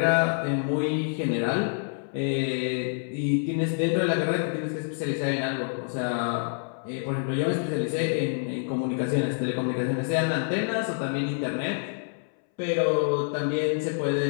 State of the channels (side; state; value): right; silent; 60 dB below the other